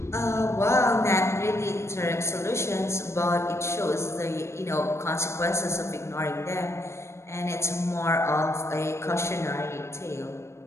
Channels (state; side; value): late; right; 0.13 ms